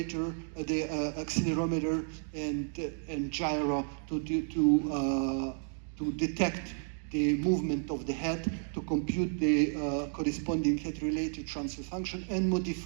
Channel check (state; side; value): silent; left; 56 dB below the other